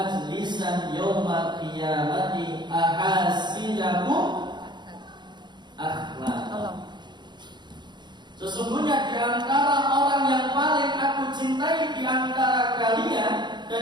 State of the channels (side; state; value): left; late; 0.21 ms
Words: yawmal qiyamati ahasidakum akhlaq. Sesungguhnya di antara orang yang paling aku cintai di antara kalian